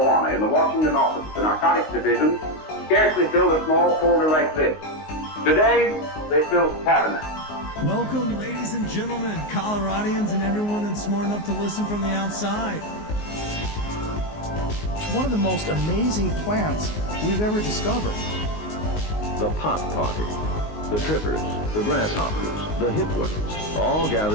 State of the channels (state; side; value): late; right; 19 ms